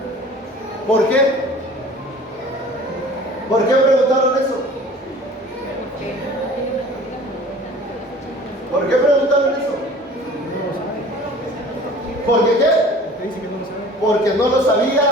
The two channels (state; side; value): normal; both; correlation 0.46